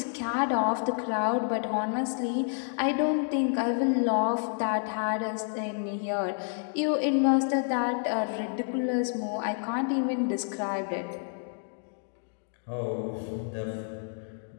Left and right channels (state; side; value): silent; right; 58 dB below the other